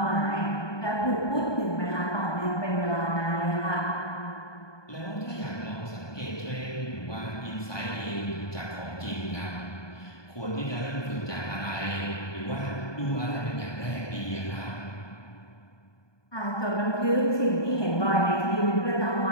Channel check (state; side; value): late; right; 1.2 ms